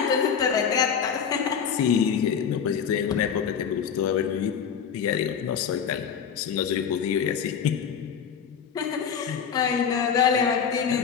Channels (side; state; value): right; quieter; 7.3 dB